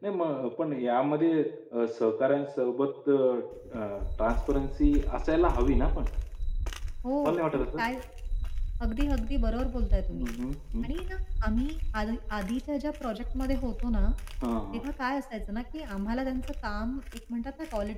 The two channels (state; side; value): identical; both; correlation 1.00